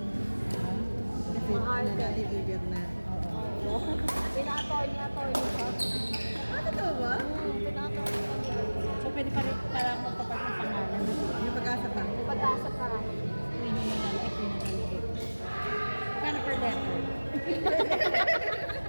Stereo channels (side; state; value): both; inverted; correlation -1.00